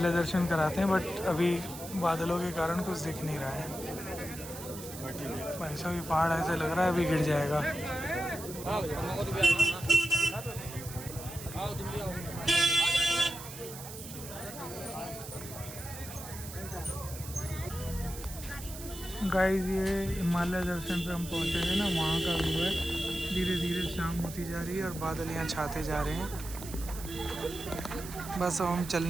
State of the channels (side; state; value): right; noise; hiss, 12 dB below the sound